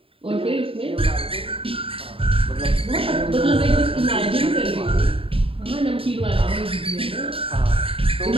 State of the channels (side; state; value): left; late; 0.27 ms